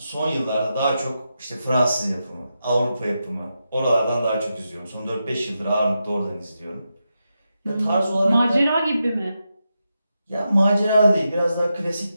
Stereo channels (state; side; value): inverted; both; correlation -0.87